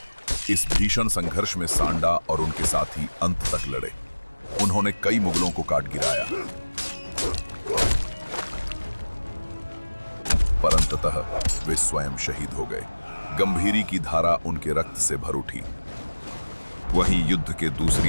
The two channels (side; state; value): both; inverted; correlation -1.00